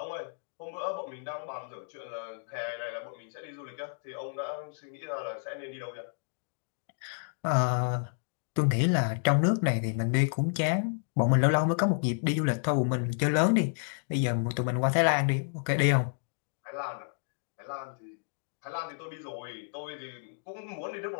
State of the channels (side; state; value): right; silent; digital silence